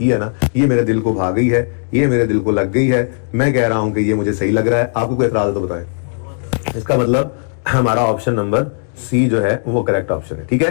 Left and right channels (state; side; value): silent; right; digital silence